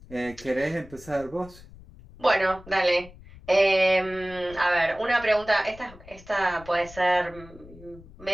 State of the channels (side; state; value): left; noise; rumble, 20 dB below the sound